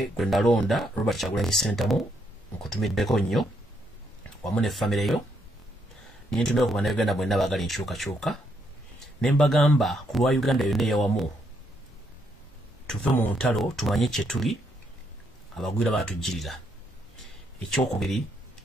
gwe nalonda Robert Kyagulanyi Ssentamu nkutumiddeko nnyo wamu ne famire yo nintumira ku bannayuganda mwenna baagala enkyukakyuka ne mbagamba ku lwa Uganda yonna eyawamu tuve mu ntalo tumanye kye tuli abagwira baatujjirira ekyokubiri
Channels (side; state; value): both; normal; correlation 0.75